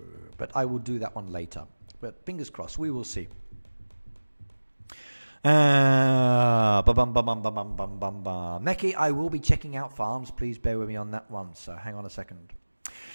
but I will do that one later. But fingers crossed, we will see. Neki, I will be checking out farms. Please bear with me on that one. So hang on a second.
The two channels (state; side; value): inverted; both; correlation -1.00